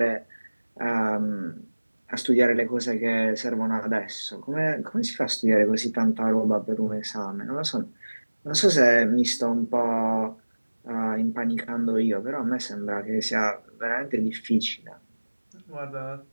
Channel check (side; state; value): both; inverted; correlation -1.00